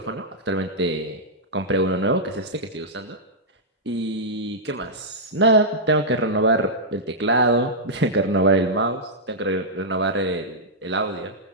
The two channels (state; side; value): normal; both; correlation -0.10